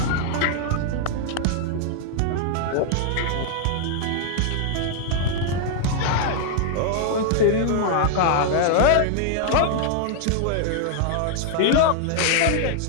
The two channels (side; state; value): both; different; correlation -0.01